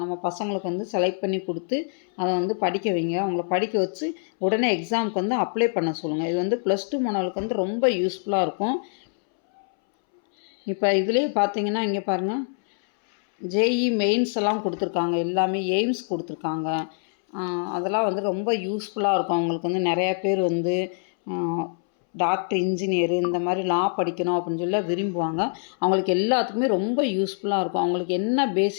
நம்ம பசங்களுக்கு வந்து செலக்ட் பண்ணி கொடுத்து அதை வந்து படிக்க வைங்க. அவங்கள படிக்க வச்சு உடனே எக்ஸாமுக்கு வந்து அப்ளை பண்ண சொல்லுங்கள். இது வந்து +2 மாணவர்களுக்கு வந்து ரொம்ப யூஸ்ஃபுல்லாக இருக்கும். இப்போ இதுலேயே பார்த்தீங்கன்னா இங்கே பாருங்கள், ஜேஇ மெயின்ஸ் எல்லாம் கொடுத்துருக்காங்க, எல்லாமே எய்ம்ஸ் கொடுத்துருக்காங்க. அதெல்லாம் வந்து ரொம்ப யூஸ்ஃபுல்லாக இருக்கும். அவங்களுக்கு வந்து நிறையா பேர் வந்து டாக்டர், இன்ஜினியரு இந்த மாதிரி லா படிக்கணும் அப்படின்னு சொல்லி விரும்புவாங்க. அவங்களுக்கு எல்லாத்துக்குமே ரொம்ப யூஸ்ஃபுல்லாக இருக்கும். அவங்களுக்கு என்ன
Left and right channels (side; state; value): right; silent; 62 dB below the other